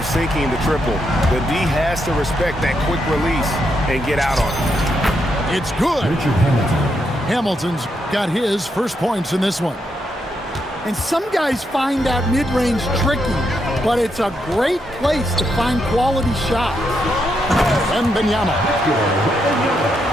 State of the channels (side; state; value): both; normal; correlation 0.80